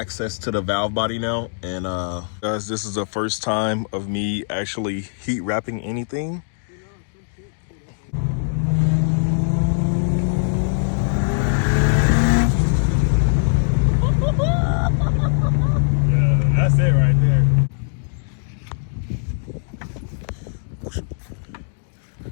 to the valve body now, and guys, this is the first time of me actually heat wrapping anything. Yeah, that's it right there.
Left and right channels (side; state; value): right; silent; digital silence